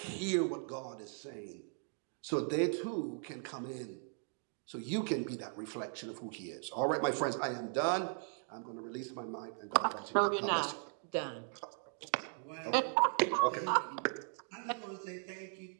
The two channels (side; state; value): left; silent; 52 dB below the other